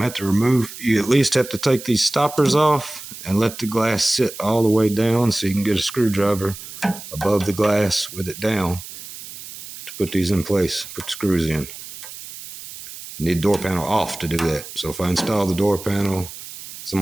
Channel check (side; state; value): right; noise; hiss, 13 dB below the sound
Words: have to remove, you at least have to take these stoppers off and let the glass sit all the way down so you can get a screwdriver above the glass with it down to put these in place, put the screws in. You need the door panel off to do that. So if I install the door panel,